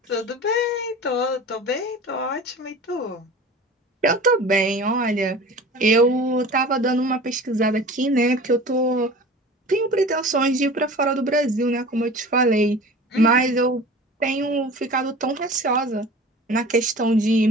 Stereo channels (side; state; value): both; normal; correlation 0.39